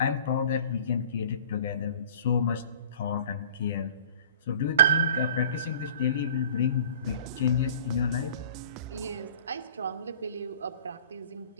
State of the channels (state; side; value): inverted; both; correlation -0.47